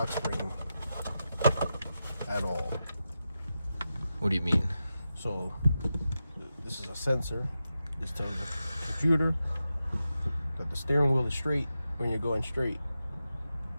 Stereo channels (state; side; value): inverted; both; correlation -0.90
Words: spring at all. What do you mean? So this is a sensor. This tells the computer that the steering wheel is straight when you're going straight.